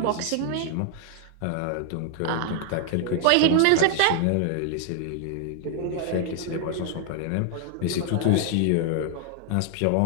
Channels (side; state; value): both; different; correlation 0.00